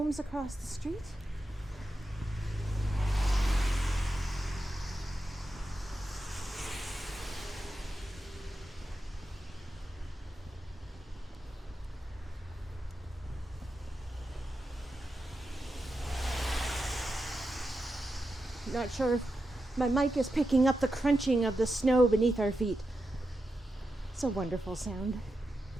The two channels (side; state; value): both; normal; correlation 0.88